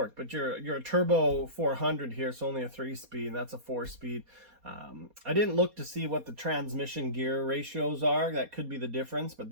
But you're a turbo 400 here, so only a 3-speed, and that's a 4-speed. I didn't look to see what the transmission gear ratios are. That could be the difference, but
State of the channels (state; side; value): late; left; 4.2 ms